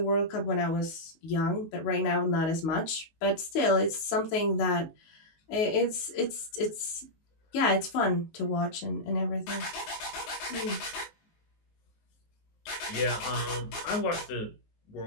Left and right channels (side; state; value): right; late; 19 ms